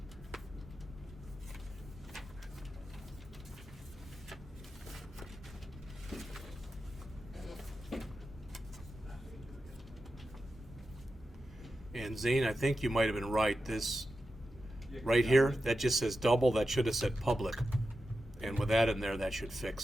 And Zane, I think you might have been right. This Yeah, right yeah. here, that just says double. That should have said public. And with that in there, that should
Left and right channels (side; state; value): both; normal; correlation 0.91